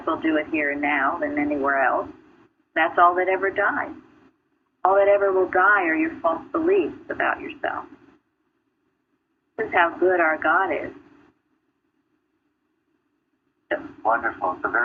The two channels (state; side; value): identical; both; correlation 1.00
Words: well do it here and now than anywhere else. That's all that ever dies. All that ever will die are your false beliefs about yourself. This is how good our God is. Wonderful. It's a